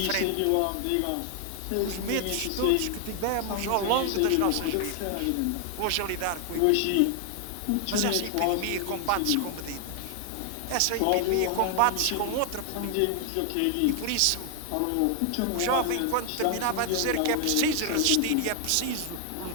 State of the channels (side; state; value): both; different; correlation 0.00